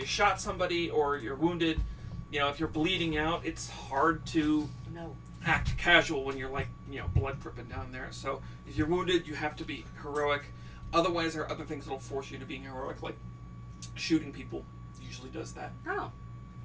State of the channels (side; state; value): both; identical; correlation 1.00